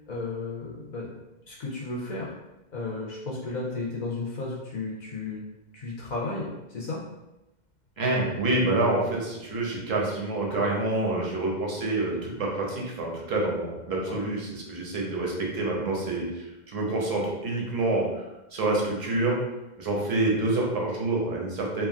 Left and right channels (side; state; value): right; late; 2.1 ms